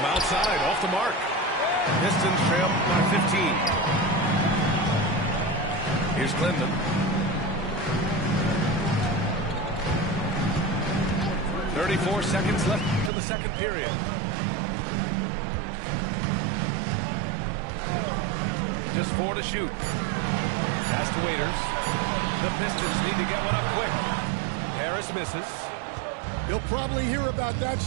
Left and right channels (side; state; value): left; drops out; at 13.1 s